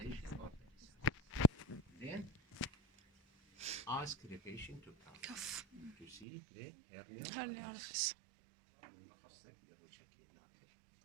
or pulsations. Then ask the patient to cough to see the hernia orifice.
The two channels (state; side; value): drops out; left; at 6.2 s